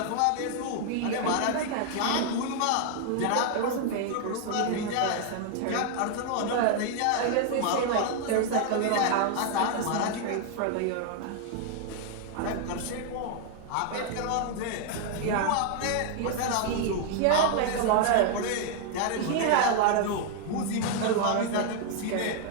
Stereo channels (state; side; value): different; both; correlation 0.00